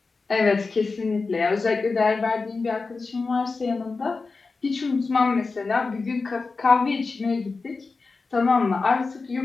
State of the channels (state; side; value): quieter; right; 4.1 dB